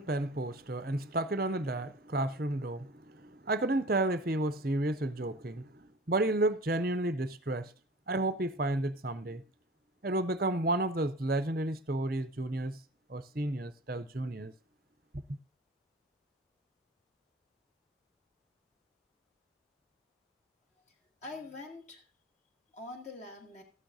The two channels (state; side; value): normal; both; correlation 0.41